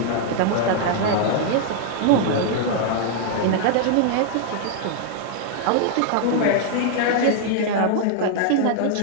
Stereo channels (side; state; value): both; different; correlation 0.00